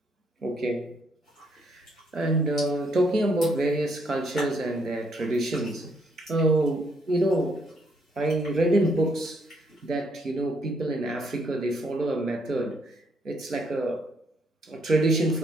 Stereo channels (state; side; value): normal; both; correlation 0.71